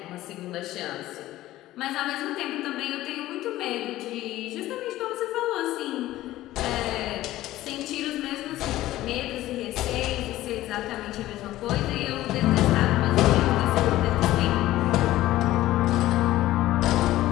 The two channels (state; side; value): quieter; right; 15.4 dB